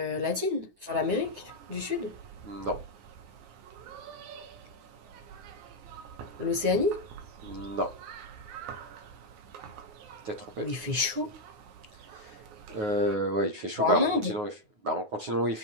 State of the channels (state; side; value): late; left; 9.5 ms